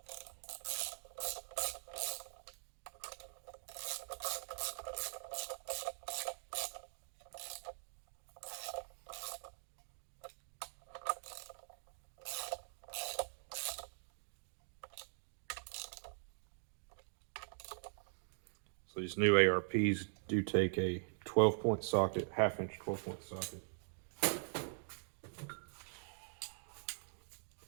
So these new ARPs do take a 12-point socket, half-inch 12-point socket.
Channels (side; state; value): left; silent; digital silence